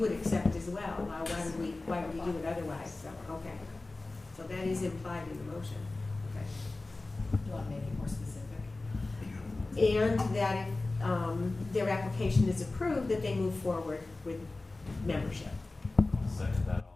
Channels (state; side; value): quieter; right; 3.2 dB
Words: accept as well. Why would we do it otherwise? So, okay. So that is implied in the motion. Okay. Do you want to make it more specific? And that if their application is approved, that they move forward with membership. I'll second that